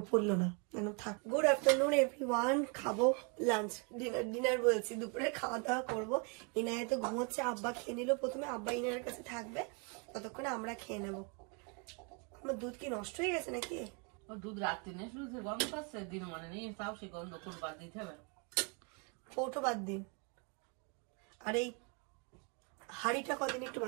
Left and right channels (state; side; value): quieter; left; 34.1 dB